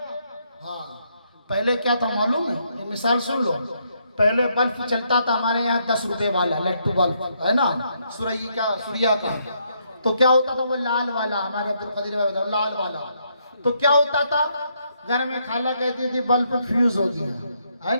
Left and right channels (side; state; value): both; inverted; correlation -0.75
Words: हाँ, पहले क्या था मालूम है? ये मिसाल सुन लो। पहले बल्ब चलता था हमारे यहाँ 10 रुपए वाला लट्टू बल्ब, है ना, सूर्या का। तो क्या होता था वो लाल वाला, हमारे अब्दुल कदीर भाई बताओ, लाल वाला। तो क्या होता था, घर में खाला कहती थी बल्ब फ्यूज हो गया, है